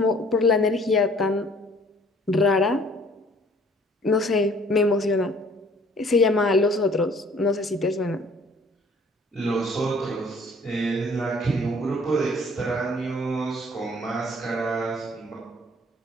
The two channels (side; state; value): both; normal; correlation 0.56